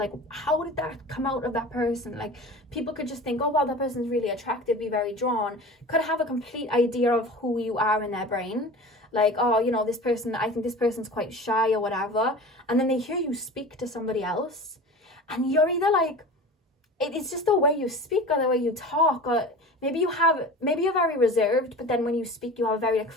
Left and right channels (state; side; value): normal; both; correlation 0.36